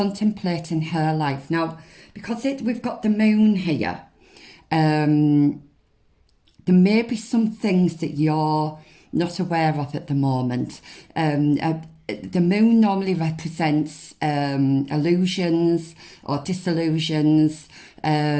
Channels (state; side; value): identical; both; correlation 1.00